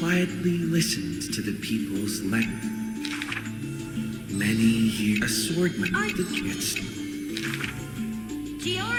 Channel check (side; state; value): both; identical; correlation 1.00